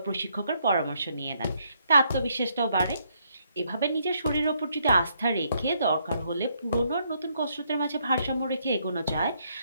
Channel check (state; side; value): inverted; both; correlation -0.73